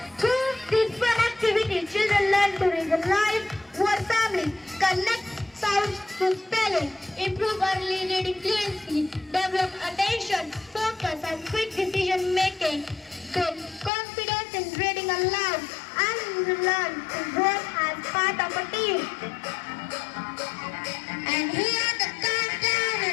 through this fun activity, children learn to read the life, word family, connect sounds to spelling, improve early reading fluency, develop attention, focus and quick decision making, build confidence in reading aloud, and learn to work as part of a team. And here the countdown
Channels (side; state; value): right; drops out; at 13.9 s